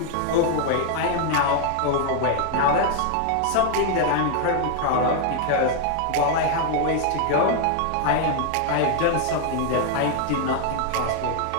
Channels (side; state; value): both; different; correlation 0.00